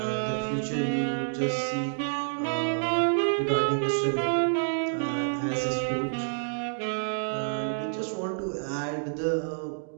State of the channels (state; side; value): silent; left; digital silence